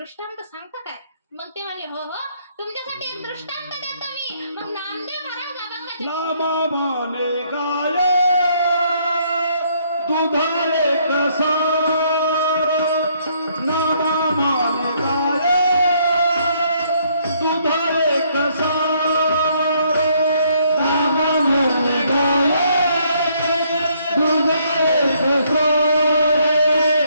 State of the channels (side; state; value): both; inverted; correlation -0.68